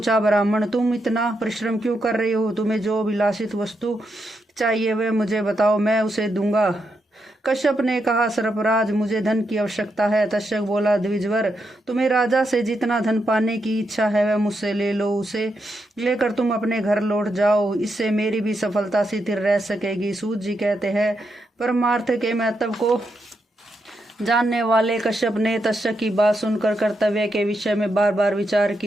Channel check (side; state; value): both; normal; correlation 0.83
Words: ब्राह्मण तुम इतना परिश्रम क्यों कर रहे हो? तुम्हें जो विलासित वस्तु चाहिए वह मुझे बताओ, मैं उसे दूंगा। कश्यप ने कहा, सर्पराज मुझे धन की आवश्यकता है। तक्षक बोला, द्विजवर तुम्हें राजा से जितना धन पाने की इच्छा है वह मुझसे ले लो। उसे लेकर तुम अपने घर लौट जाओ, इससे मेरी भी सफलता स्थिर रह सकेगी। सूत जी कहते हैं, परमार्थ के महत्व को जानने वाले कश्यप ने तक्षक की बात सुनकर कर्तव्य के विषय में बार बार विचार